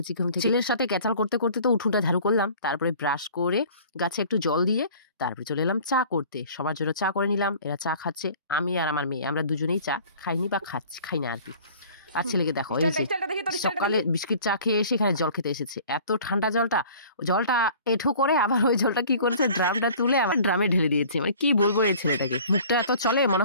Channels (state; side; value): inverted; both; correlation -0.48